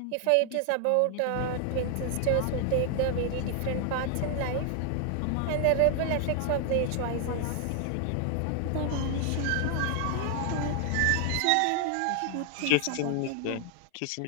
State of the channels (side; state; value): both; different; correlation 0.00